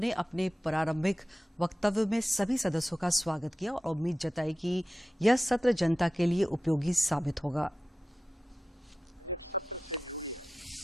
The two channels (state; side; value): normal; both; correlation 0.94